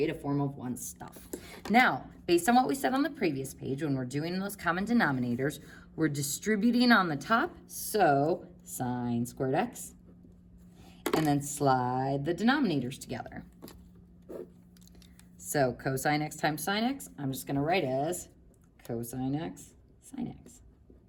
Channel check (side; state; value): both; identical; correlation 1.00